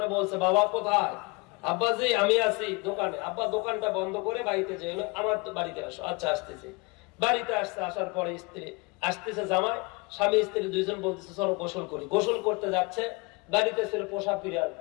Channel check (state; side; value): quieter; right; 27.7 dB